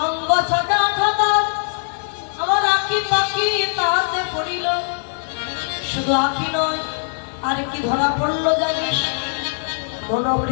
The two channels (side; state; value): right; silent; 64 dB below the other